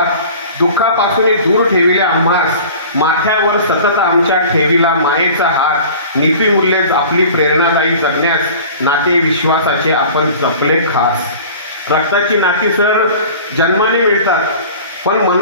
दुःखापासून दूर ठेविल्या आम्हास, माथ्यावर सतत आमच्या ठेविला मायेचा हात, नीतिमूल्ये आपली प्रेरणादायी जगण्यास, नाते विश्वासाचे आपण जपले खास. रक्ताची नाती सर जन्माने मिळतात, पण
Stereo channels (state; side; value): inverted; both; correlation -0.42